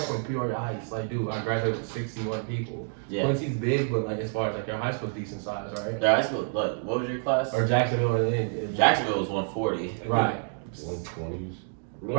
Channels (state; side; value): silent; left; digital silence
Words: from Peoria Heights. Like, dude, I graduated with 61 people. Yeah. Quincy's big, but like as far as like your high school's decent size, right? Their high school, what was your class? Or Jacksonville or Jacksonville was 140. Right. 120s.